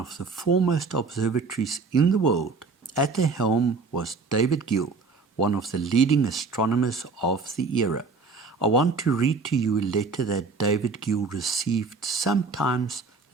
the foremost observatories in the world. At the helm was David Gill, one of the leading astronomers of the era. I want to read to you a letter that David Gill received sometimes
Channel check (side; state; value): left; quieter; 4.3 dB